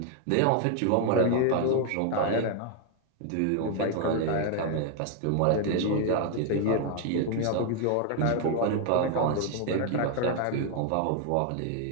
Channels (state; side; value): different; both; correlation 0.00